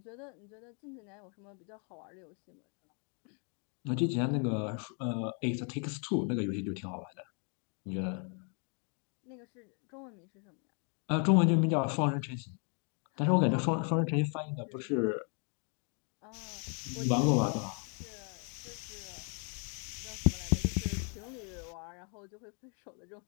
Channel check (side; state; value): right; quieter; 39.3 dB